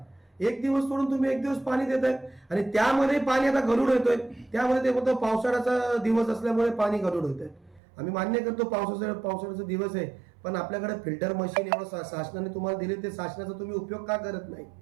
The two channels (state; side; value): drops out; left; at 7.8 s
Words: एक दिवस सोडून तुम्ही एक दिवस पाणी देत आहे, आणि त्यामध्ये पाणी आता गढूळ येतोय. त्यामुळे ते म्हणतो पावसाळ्याचा दिवस असल्यामुळे पाणी गढूळ होत आहे. आम्ही मान्य करतो पावसाळ्याचा दिवस आहे, पण आपल्याकडे फिल्टर मशीन एवढं शासनाने तुम्हाला दिले, ते शासनाचा तुम्ही उपयोग का करत नाही?